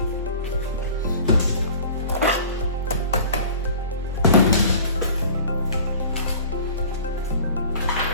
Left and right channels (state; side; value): inverted; both; correlation -0.43